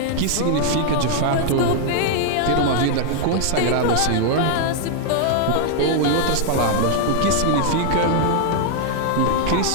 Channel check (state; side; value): different; both; correlation -0.01